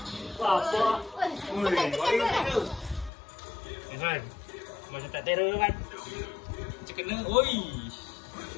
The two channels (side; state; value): right; drops out; at 3.1 s